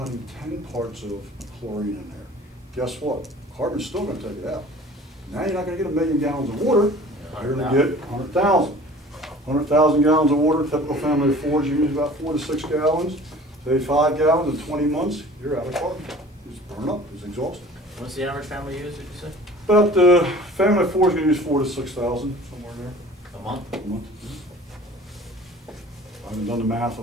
10 parts of chlorine in there. Guess what? Carbon's still gonna take it out. Now you're not gonna get 1 million gallons of water, you're gonna get 100,000. 100,000 gallons of water, typical family of 4s, you use about 4 to 6 gallons. Say 5 gallons in 20 months, you're out of carbon. It's burned up, it's exhausted. What's the average family use, did you say? About the family of 4 is gonna use 4 to 6,000, somewhere in there. A month? A month. I haven't done the math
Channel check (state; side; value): normal; both; correlation 0.45